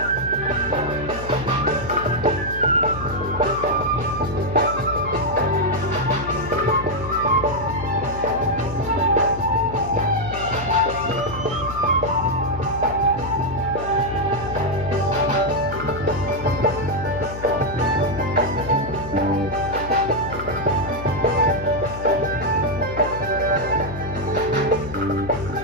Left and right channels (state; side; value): noise; left; hum, 10 dB below the sound